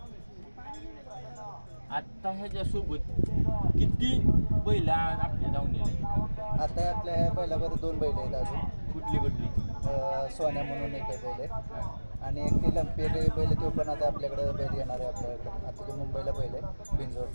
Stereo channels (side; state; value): both; inverted; correlation -1.00